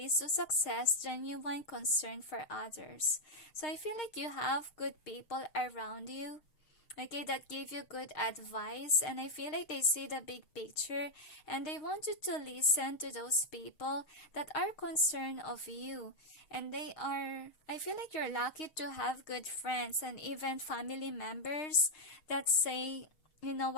to success. Genuine concern for others. So I feel like you have good people around you, okay, that give you good advice, and I feel like they see the big picture and they want you to listen to those people that are concerned of you. And I feel like you're lucky to have good friends and even family members that say, you know,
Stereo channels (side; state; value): right; late; 6.5 ms